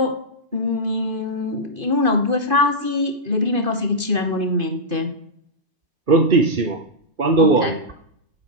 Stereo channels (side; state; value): left; late; 2.5 ms